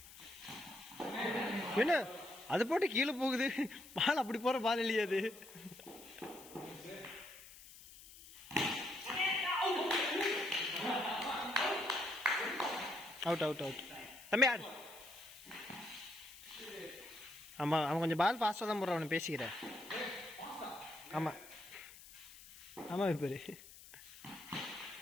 என்ன அது போட்டு கீழே போகுது? பால் அப்படி போற பால் இல்லையா அது? Out out out. தம்பி ஆடு. ஆமா அவன் கொஞ்சம் பால் ஃபாஸ்ட்டாக தான் போடுறான். அவனை பேசிக்கிறேன். ஆமா ஆமா பேரு.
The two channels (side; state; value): left; noise; hiss, 18 dB below the sound